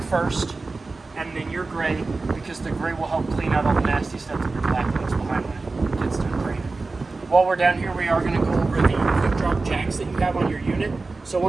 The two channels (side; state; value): left; quieter; 3.7 dB